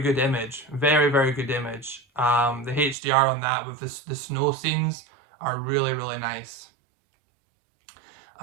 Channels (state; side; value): drops out; left; at 3.0 s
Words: good image, very good image. The HDR on that with the snow scenes are really nice.